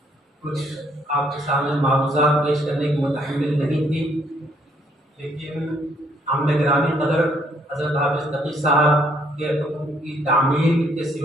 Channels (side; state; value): both; normal; correlation 0.67